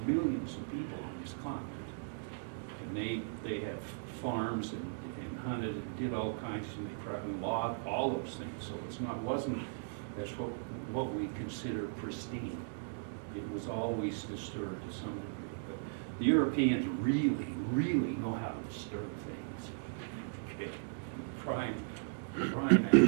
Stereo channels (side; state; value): left; silent; digital silence